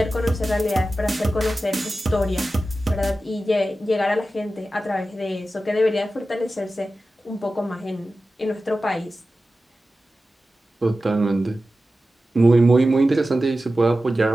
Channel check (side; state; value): both; normal; correlation 0.94